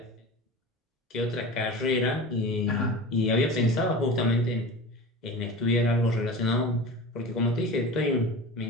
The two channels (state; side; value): normal; both; correlation 0.33